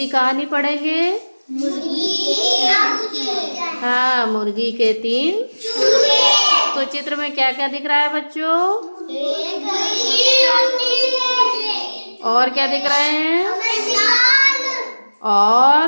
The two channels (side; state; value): both; inverted; correlation -1.00